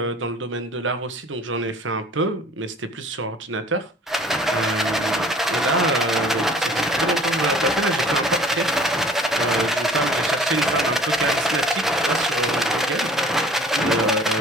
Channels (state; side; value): normal; both; correlation 0.49